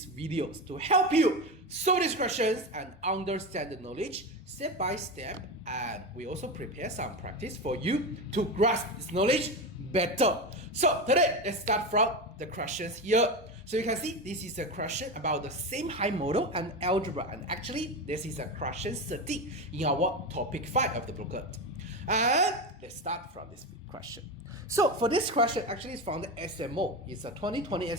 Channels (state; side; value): normal; both; correlation 0.19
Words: videos to help you solve these questions and understand the knowledge step by step. And we also prepare some practice for you to grasp this knowledge better. So today, let's start from the questions here. So you can see this is a question about the same high model and algebra, and actually this is a question 13 in our topic 5 of the booklet. And let's start from this question. So for this question, actually it's from the SMO. It's a 2020